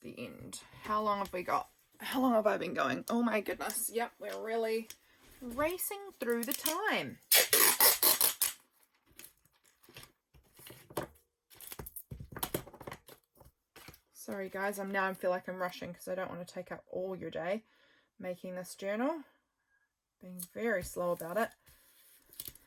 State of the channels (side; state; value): both; identical; correlation 1.00